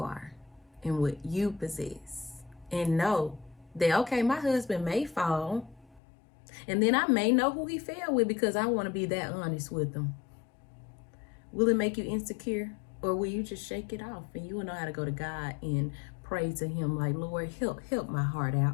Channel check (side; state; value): right; drops out; at 6.0 s